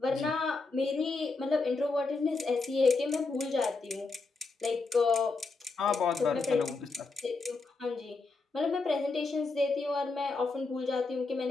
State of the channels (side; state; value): right; quieter; 3.9 dB